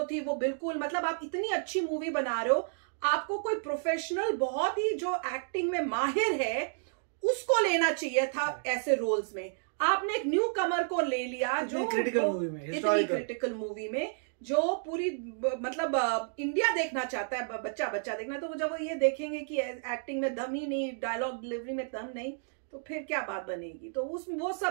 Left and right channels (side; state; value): left; silent; digital silence